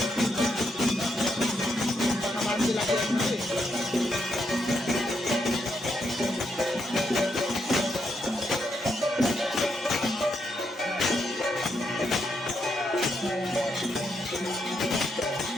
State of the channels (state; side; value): normal; both; correlation 0.79